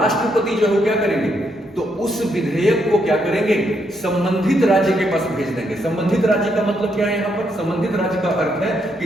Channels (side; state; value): both; normal; correlation 0.77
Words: जो है क्या करेंगे, तो उस विधेयक को क्या करेंगे, संबंधित राज्य के पास भेज देंगे। संबंधित राज्य का मतलब क्या है यहाँ पर, संबंधित राज्य का अर्थ है